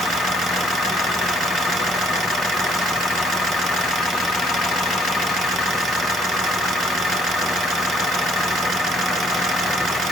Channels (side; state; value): both; normal; correlation 0.62